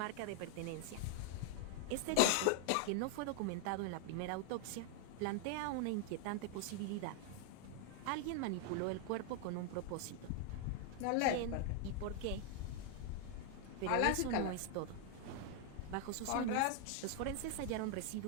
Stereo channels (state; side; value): different; both; correlation 0.00